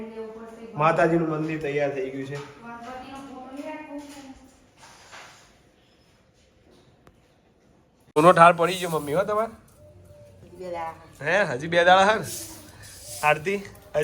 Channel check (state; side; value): identical; both; correlation 1.00